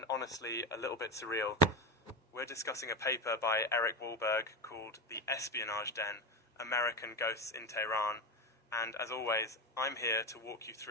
honestly a little bit surreal. We're discussing a paper by Eric Wahlberg called The Espionage Den, American Ghosts in Tehran, and as always, I'm here to walk you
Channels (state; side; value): normal; both; correlation 0.18